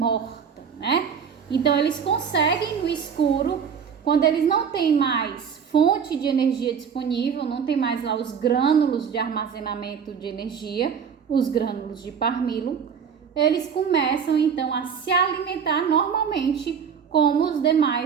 né? Então, eles conseguem no escuro, quando eles não têm mais fonte de energia disponível, não tem mais lá os grânulos de armazenamento de energia, os grânulos de parmilo, eles começam então a se alimentar normalmente como os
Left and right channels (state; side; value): quieter; left; 7.0 dB